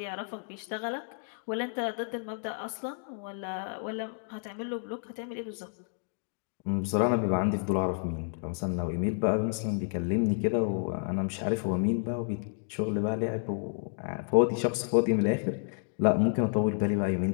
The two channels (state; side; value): silent; right; 57 dB below the other